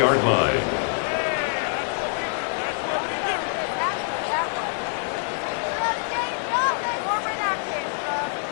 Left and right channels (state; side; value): silent; right; 62 dB below the other